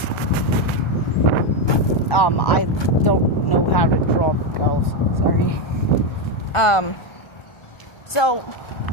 I don't know how to draw girls, sorry. So,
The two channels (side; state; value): right; late; 1.4 ms